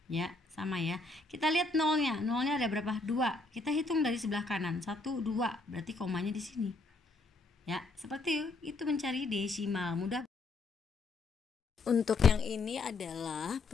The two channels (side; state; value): right; quieter; 3.4 dB